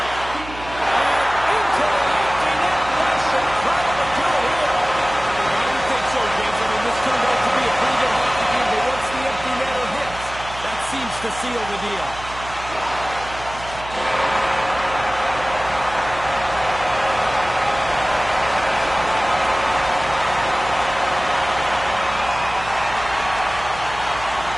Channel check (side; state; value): right; noise; hum, 14 dB below the sound